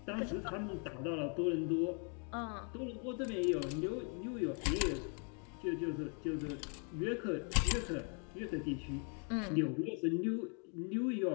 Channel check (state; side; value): quieter; right; 39.8 dB